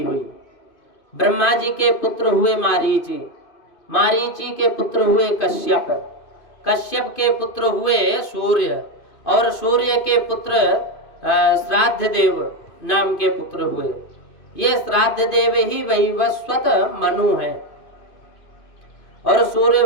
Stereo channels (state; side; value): late; right; 2.5 ms